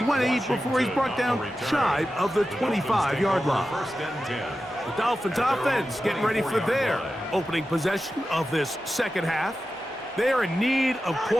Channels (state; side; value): normal; both; correlation 0.92